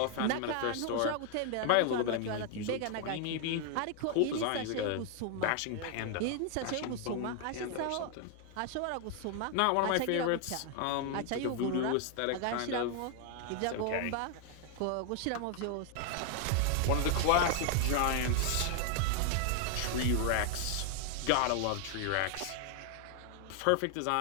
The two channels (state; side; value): different; both; correlation 0.00